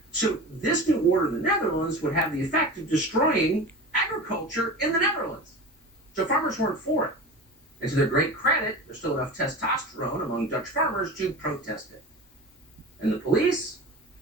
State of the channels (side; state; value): both; normal; correlation 0.32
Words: So this new order in the Netherlands would have the effect of destroying agriculture in the Netherlands. So farmers weren't for it. And to their great credit, there's still enough testosterone among Dutch farmers to protest it. And the police,